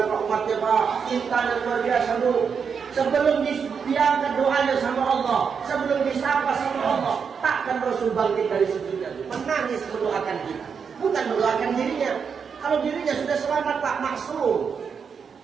Pak umatnya Pak, cintanya luar biasa dulu. Sebelum diangkat doanya sama Allah, sebelum disapa sama Allah, takkan Rasul bangkit dari sujudnya, menangis mendoakan kita, bukan mendoakan dirinya. Kalau dirinya sudah selamat Pak, maksum,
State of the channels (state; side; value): quieter; left; 6.3 dB